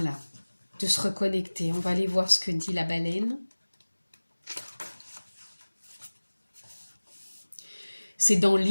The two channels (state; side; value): inverted; both; correlation -1.00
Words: de se reconnecter. On va aller voir ce que dit la baleine. C'est dans